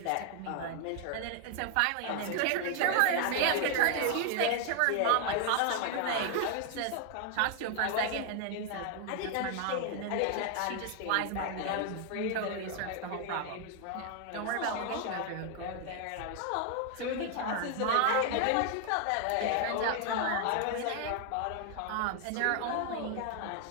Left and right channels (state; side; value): different; both; correlation 0.00